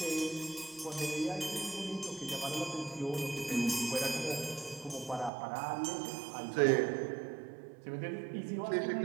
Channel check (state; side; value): drops out; left; at 5.3 s